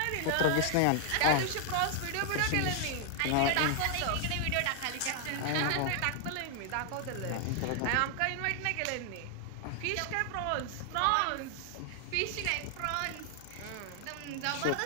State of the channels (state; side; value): different; both; correlation 0.00